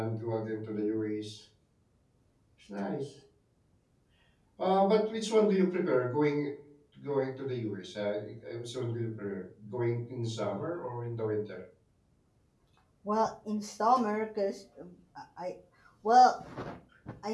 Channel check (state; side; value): identical; both; correlation 1.00